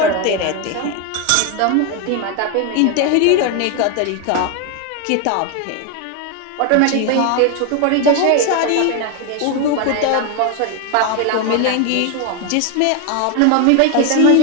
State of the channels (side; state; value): both; different; correlation 0.01